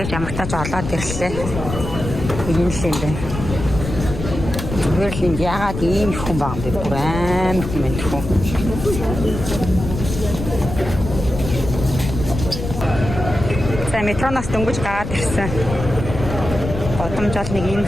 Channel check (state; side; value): noise; left; rumble, 6 dB below the sound